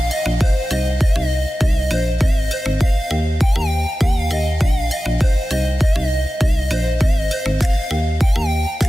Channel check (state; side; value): normal; both; correlation 0.94